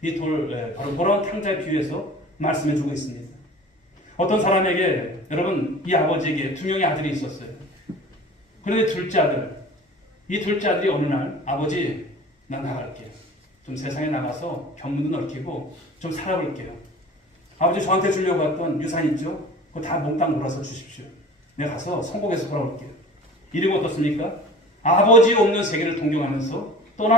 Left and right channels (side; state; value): both; normal; correlation 0.42